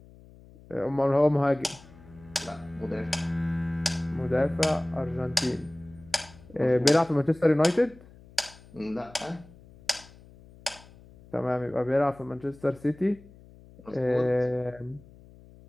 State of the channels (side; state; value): left; noise; hum, 23 dB below the sound